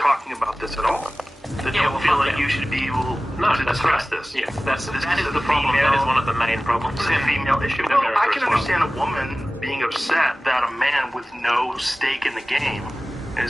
about this at all. That don't feel like you should be able to discuss this. Yeah, that is the problem. That is one of the main problems. It's a female issue. in Well, America I can as well. understand a woman being upset that a man with no stake in the game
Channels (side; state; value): both; normal; correlation 0.97